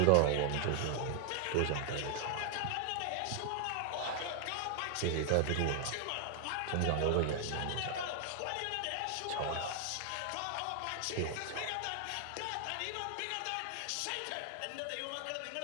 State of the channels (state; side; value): different; both; correlation 0.00